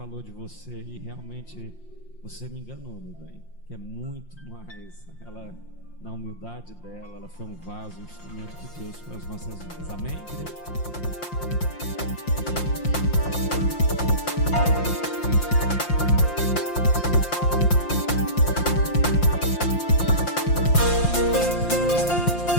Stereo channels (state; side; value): late; right; 5.7 ms